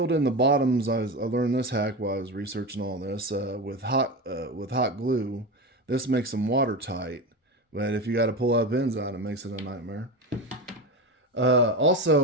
in the bottoms. I learned this hack while I was researching all this with hot glue. This makes them watertight, but if you got to pull out pins out, it makes it a nightmare.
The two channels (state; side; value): normal; both; correlation 0.22